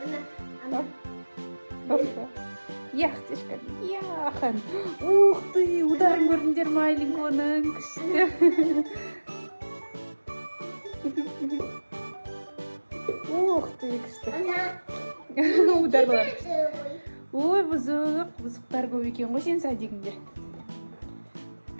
Яқтешка, яхан. Ух ты, ударын көрдіңдер ма Айлинконың? Күшті. Ух ты, күшті. Ударлар. Ой, бұзықтар көп екен ғой сен садигіңде.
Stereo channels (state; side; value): inverted; both; correlation -1.00